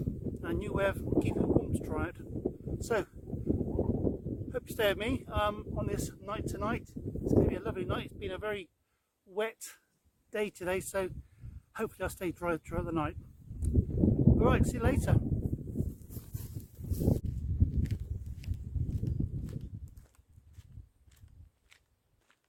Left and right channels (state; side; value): identical; both; correlation 1.00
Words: and a new way of keeping warm to try out. So, hope you stay with me on this night tonight. It's going to be a lovely night. It's been a very wet day today, so hopefully I'll stay dry throughout the night. Alright, see you later.